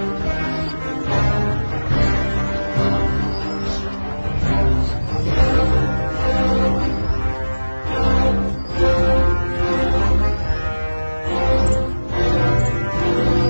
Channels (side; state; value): both; inverted; correlation -1.00